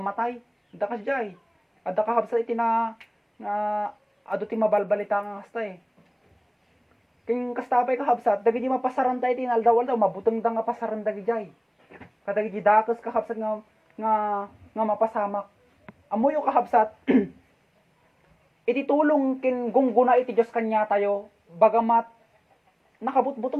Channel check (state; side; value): identical; both; correlation 1.00